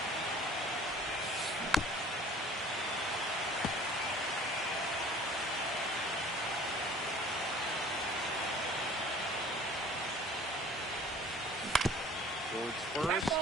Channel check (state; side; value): normal; both; correlation 0.49